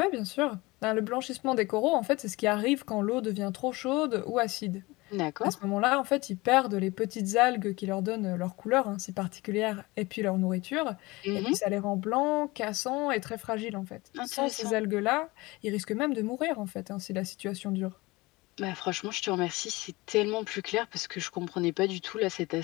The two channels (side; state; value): right; quieter; 22.3 dB